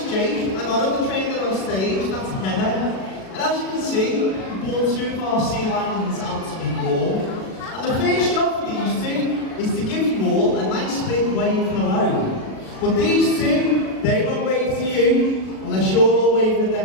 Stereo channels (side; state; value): right; late; 37 ms